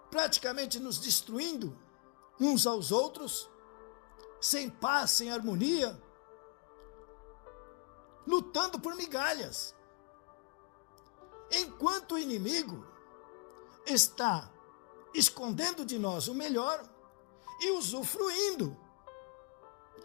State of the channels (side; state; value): right; quieter; 32.5 dB